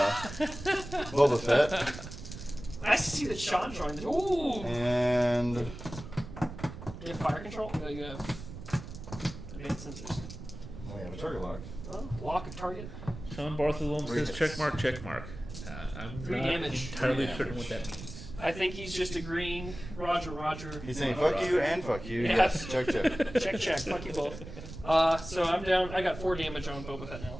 Boba Fett. Nice to see that Sean joined. Ooh. And You have fire control? No, you have advanced sensors. we have a target lock. Oh, lock of target. Sean Bartholome Three says hits. check mark, check mark. I'm 3 not damage. entirely 3 certain damage. what that means. I think he's just agreeing. Roger, Roger. He's saying fuck you and fuck you. Yeah. Yes. Check, check. Check, check. Fuck you both. So I'm down. I got 4 damage on Boba Fett now.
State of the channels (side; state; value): right; noise; rumble, 11 dB below the sound